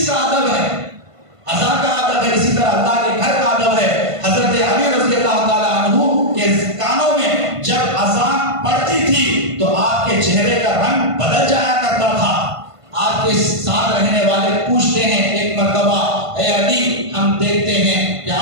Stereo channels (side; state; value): left; late; 1.5 ms